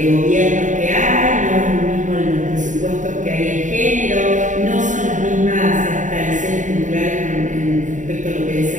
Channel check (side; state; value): left; late; 0.36 ms